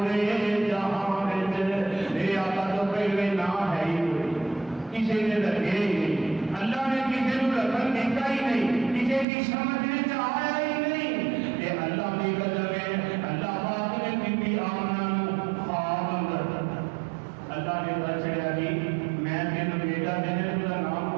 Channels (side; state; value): left; drops out; at 9.2 s